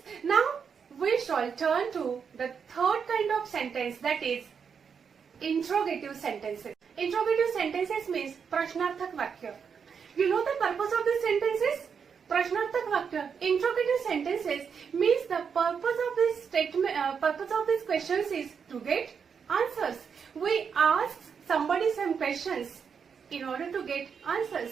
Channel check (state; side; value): quieter; left; 6.5 dB